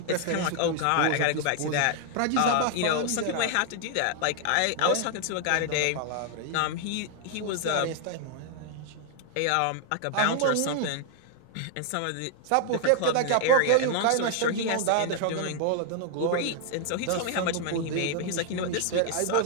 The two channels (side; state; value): both; different; correlation 0.00